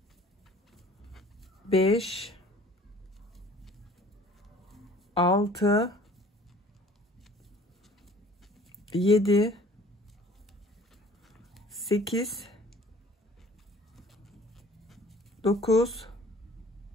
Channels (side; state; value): both; normal; correlation 0.50